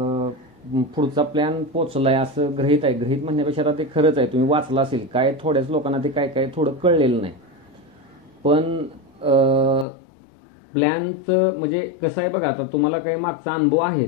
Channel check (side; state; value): right; drops out; at 9.9 s